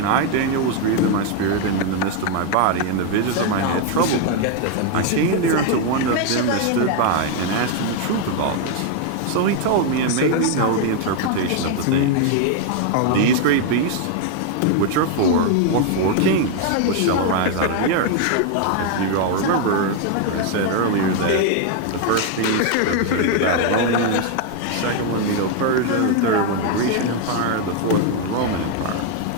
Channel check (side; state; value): both; different; correlation 0.01